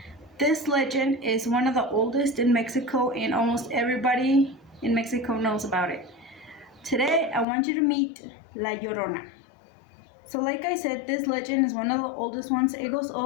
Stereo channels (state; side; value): drops out; right; at 7.5 s